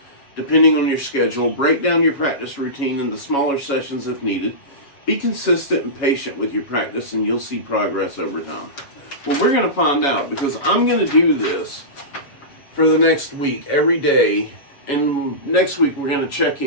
depending on your schedule. Break down your practice routine into smaller sessions if needed. Be consistent and patient with your practice, and you'll see progress over time. Well, we're going to find out, because I'm going to do this for the next week, every day. And next week, we're going to check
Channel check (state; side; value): late; right; 7.2 ms